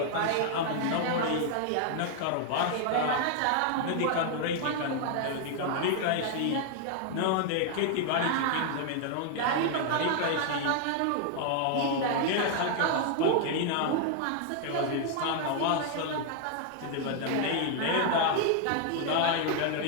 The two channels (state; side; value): different; both; correlation 0.00